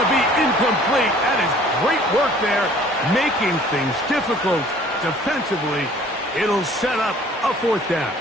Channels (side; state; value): both; normal; correlation 0.53